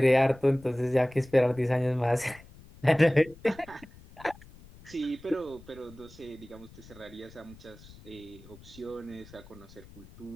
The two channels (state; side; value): noise; left; rumble, 21 dB below the sound